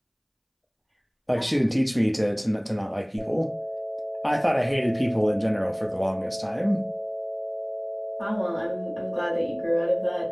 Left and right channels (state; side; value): identical; both; correlation 1.00